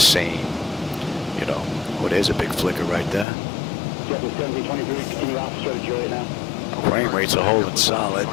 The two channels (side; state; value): right; drops out; at 3.2 s